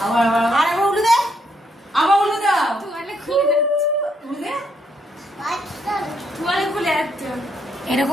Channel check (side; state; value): both; normal; correlation 0.74